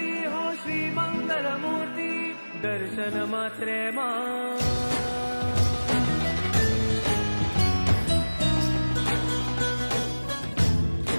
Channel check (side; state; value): both; inverted; correlation -1.00